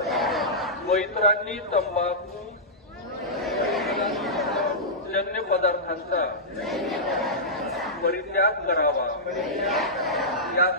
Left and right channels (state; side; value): normal; both; correlation -0.13